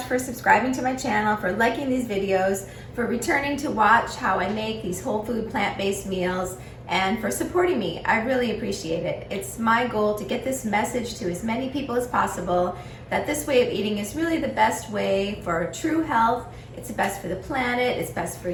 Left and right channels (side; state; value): both; identical; correlation 1.00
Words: for subscribing to my channel, for liking these videos, for returning to watch how I make these whole food plant-based meals, and for supporting me. I really appreciate it. It's my goal to get this message to as many people as possible that this way of eating is really the best way for true health. It's the best for the planet, it's best for